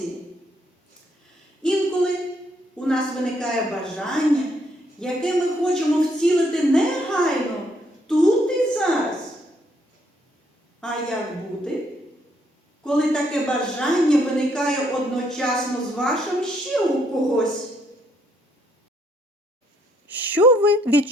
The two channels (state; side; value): normal; both; correlation 0.71